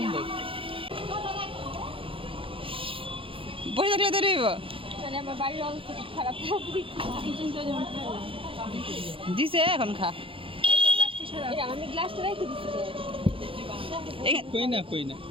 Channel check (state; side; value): late; left; 0.26 ms